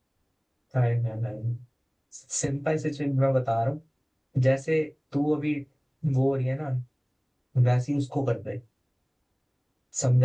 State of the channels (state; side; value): identical; both; correlation 1.00